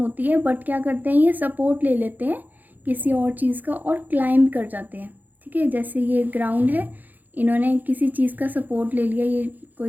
है, बट क्या करते हैं ये सपोर्ट ले लेते हैं किसी और चीज़ का और क्लाइंब कर जाते हैं। ठीक है, जैसे ये ग्राउंड है, इन्होंने किसी चीज़ का सपोर्ट ले लिया, ये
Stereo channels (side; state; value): left; late; 0.084 ms